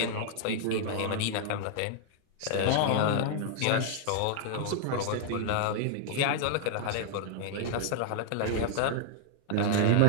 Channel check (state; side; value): different; both; correlation -0.01